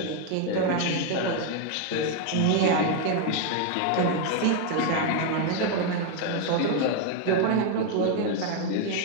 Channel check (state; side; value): different; both; correlation 0.01